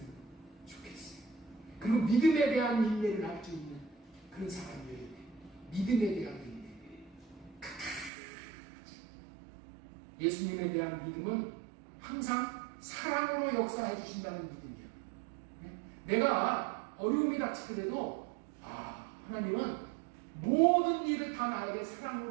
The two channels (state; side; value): drops out; left; at 8.1 s